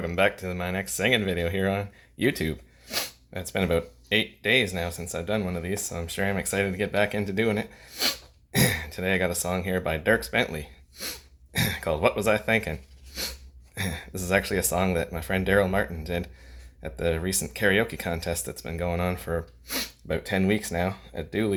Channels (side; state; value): both; identical; correlation 1.00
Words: back to my next singing video here on YouTube. It's been about 8 days now since I've done one of these, so I'm sure I'm excited to get back into doing it. Today I got a song here by Dierks Bentley called What Was I Thinkin'? This is actually a song that my friend Daryl Martin did at the recent karaoke contest that's been going on for about 10 weeks now at